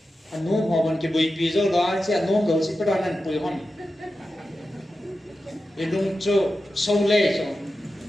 anh nuông họ vẫn cái bụi bì rồi đó sẽ nuông đầu sẽ bắt đầu ăn bụi hòn vì nuông cho sâu lê rồi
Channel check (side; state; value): both; normal; correlation 0.92